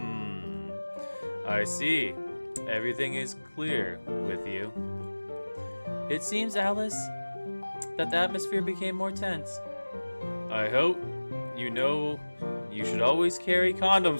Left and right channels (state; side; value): inverted; both; correlation -1.00